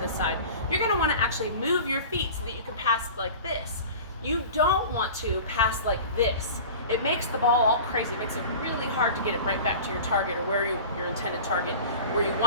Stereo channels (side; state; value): both; inverted; correlation -0.38